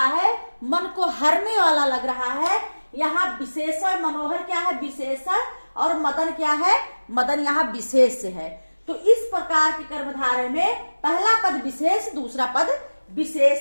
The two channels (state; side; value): inverted; both; correlation -1.00